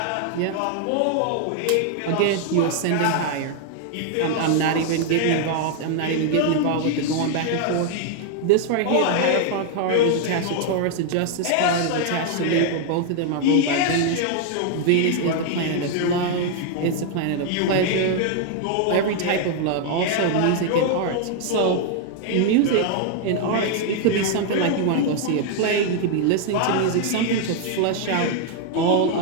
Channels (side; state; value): both; different; correlation 0.00